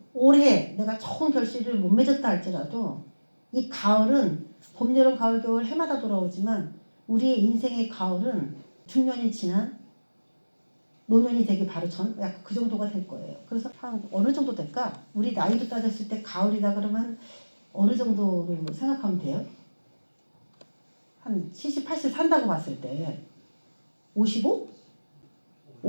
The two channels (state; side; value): inverted; both; correlation -1.00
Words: 올해 내가 좋은 결실을 못 맺었다 할지라도 이 가을은 봄, 여름, 가을, 겨울 해마다 돌아오지만 우리의 인생의 가을은 중년이 지난 노년이 되기 바로 전 약간 그 정도가 될 거예요. 그래서 한 어느 정도 될까? 우리 나이로 따졌을 때 가을이다 그러면 어느 정도로 생각하면 돼요? 한 70, 80 산다고 봤을 때 55?